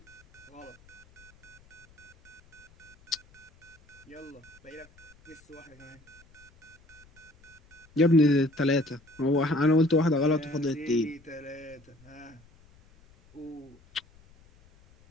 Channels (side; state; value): left; noise; rumble, 27 dB below the sound